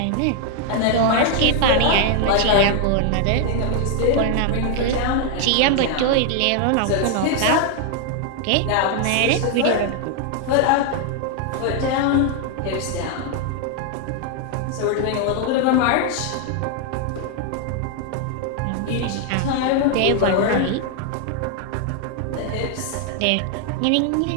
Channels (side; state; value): both; different; correlation 0.00